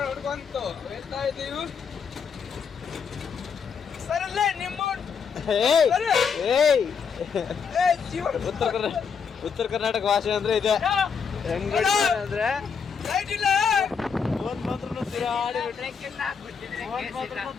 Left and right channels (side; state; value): right; quieter; 6.2 dB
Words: ಹುಡ್ಕೊಂತು ಹೇಳ್ತಾ ಇದೀವಿ ಸರಲ್ಲೇ ನಿಮ್ಮ ಉತ್ತರ ಕರ್ನಾಟಕ ಭಾಷೆ ಅಂದ್ರೆ ಇದೆ ಹೆಂಗ್ ಹೊಡಿತಾನೆ ಅಂದ್ರೆ ಲೈಟ್ ಇಲ್ಲ ಫೋನ್ ಮಾತ್ರ